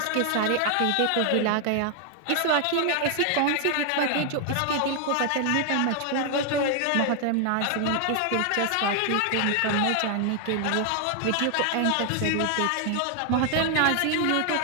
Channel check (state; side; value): different; both; correlation 0.00